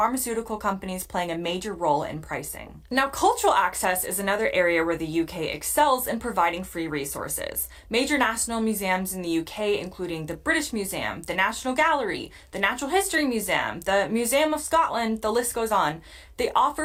companies playing a major role in pricing. Now, cultural access is another area where the UK excels in providing free resources. Major national museums in the UK, including the British Museum, the National Gallery, the Natural History Museum, the Museum of Scotland, the list goes on, they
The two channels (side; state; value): both; identical; correlation 1.00